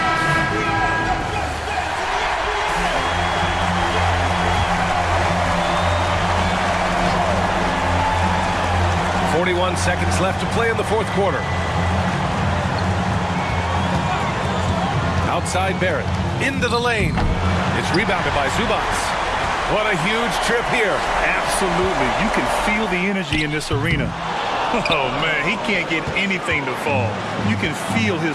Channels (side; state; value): both; identical; correlation 1.00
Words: .41 seconds left to play in the fourth quarter. Outside Barrett. Into the lane. It's rebounded by Zubats. What a huge trip here. Absolutely. You can feel the energy in this arena. Oh, man, he can't get anything to fall. You can feel